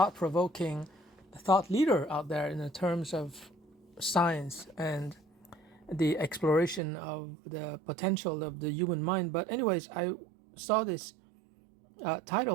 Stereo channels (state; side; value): drops out; left; at 6.8 s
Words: thought leader out there in the terms of science and the exploration of the potential of the human mind. But anyways, I saw this